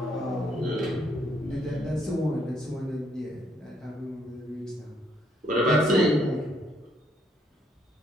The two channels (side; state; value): both; normal; correlation 0.71